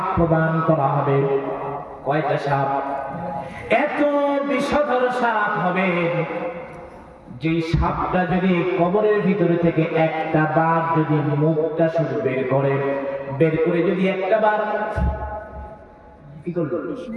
প্রদান করা হবে। কয়টা সাপ? এত বিষধর সাপ হবে যে সাপটা যদি কবরের ভিতরে থেকে একটা বার যদি মুখটা শুধু বের করে যদি একটা বার কি করলো,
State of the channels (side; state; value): both; identical; correlation 1.00